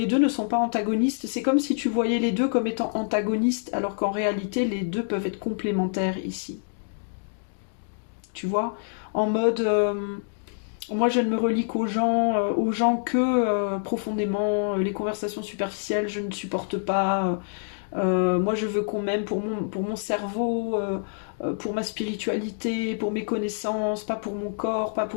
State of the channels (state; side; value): silent; right; digital silence